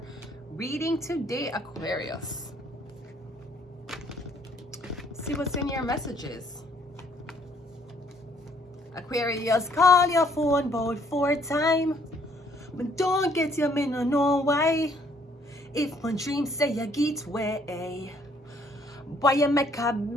reading today, Aquarius. See what's in your messages. Aquarius, call your phone about 4 times, but don't get your me no know why. If my dream say you get way, boy you make a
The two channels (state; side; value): normal; both; correlation 0.64